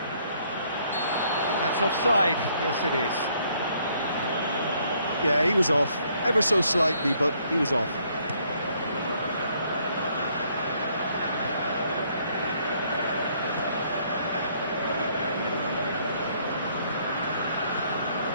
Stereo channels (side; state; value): both; inverted; correlation -0.67